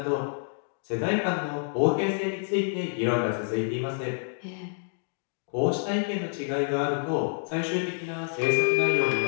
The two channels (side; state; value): right; silent; digital silence